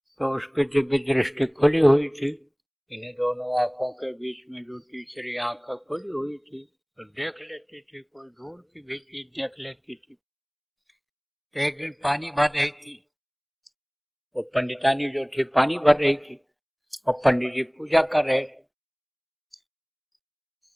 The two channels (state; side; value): identical; both; correlation 1.00